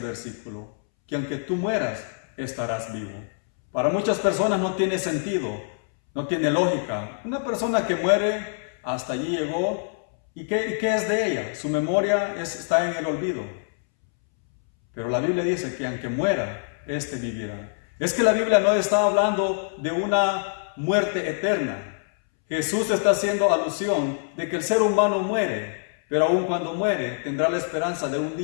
Que aunque tú mueras, estarás vivo. Para muchas personas no tiene sentido, no tiene lógica. Una persona que muere, hasta allí llegó, ¿y qué es de ella? Su memoria está en el olvido. Pero la Biblia dice que aunque muera, éste vivirá. Es que la Biblia no está hablando de una muerte eterna. Jesús está haciendo alusión de que el ser humano muere, pero aun cuando muere tendrá la esperanza de un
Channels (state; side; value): silent; right; 62 dB below the other